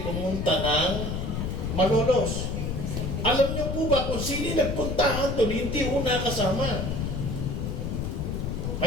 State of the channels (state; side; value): noise; left; rumble, 2 dB below the sound